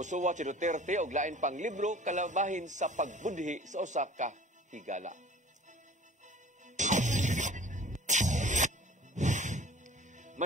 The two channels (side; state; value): both; normal; correlation 0.46